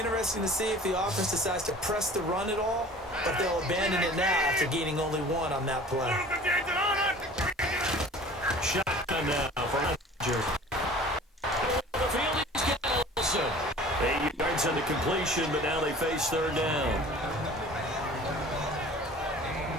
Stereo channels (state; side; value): normal; both; correlation 0.45